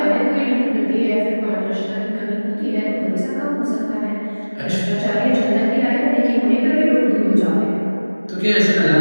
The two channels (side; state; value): both; inverted; correlation -1.00